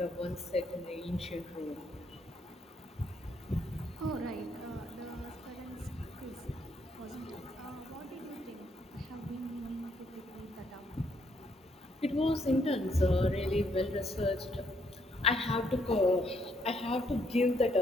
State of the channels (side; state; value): both; normal; correlation 0.72